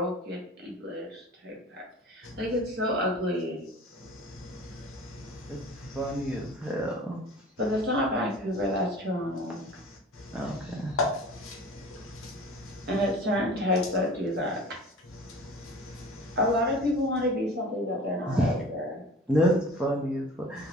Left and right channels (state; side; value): normal; both; correlation 0.42